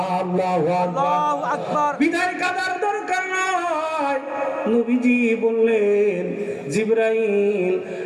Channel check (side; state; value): both; identical; correlation 1.00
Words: আল্লাহু আকবার। বিদায় কাদার দরকার নাই। নবীজি বললেন, জিবরাইল,